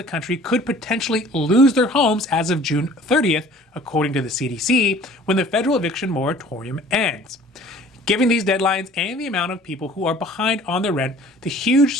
country could potentially lose their homes as of June 30th, according to the CDC, when the federal eviction moratorium ends. Given these deadlines and the amount of people who are behind on their rent, the huge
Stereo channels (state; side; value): normal; both; correlation 0.50